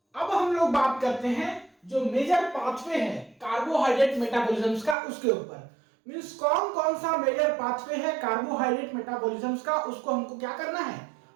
अब हम लोग बात करते हैं जो मेजर पाथवे है कार्बोहाइड्रेट मेटाबॉलिज्म का, उसके ऊपर। मींस कौन कौन सा मेजर पाथवे है कार्बोहाइड्रेट मेटाबॉलिज्म का, उसको हमको क्या करना है,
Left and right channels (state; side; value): drops out; left; at 5.0 s